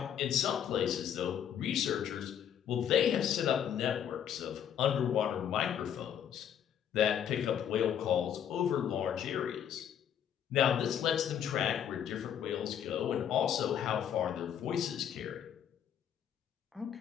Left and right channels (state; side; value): quieter; right; 9.2 dB